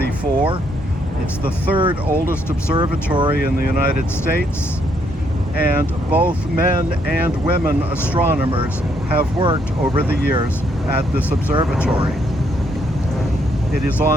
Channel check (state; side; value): normal; both; correlation 0.72